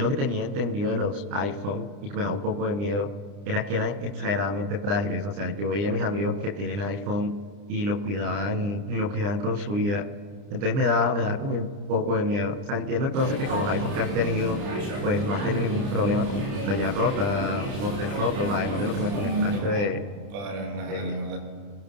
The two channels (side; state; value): left; late; 30 ms